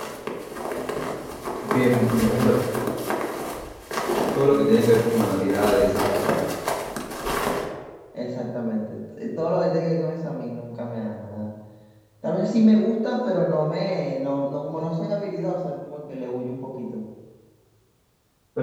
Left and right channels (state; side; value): identical; both; correlation 1.00